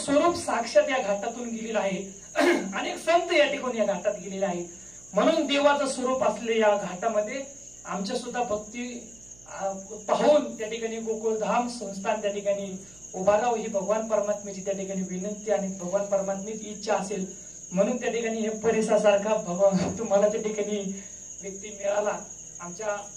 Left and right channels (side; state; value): right; noise; hum, 25 dB below the sound